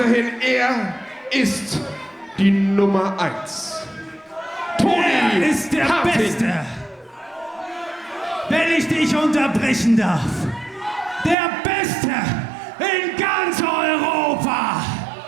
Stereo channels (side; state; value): left; drops out; at 11.4 s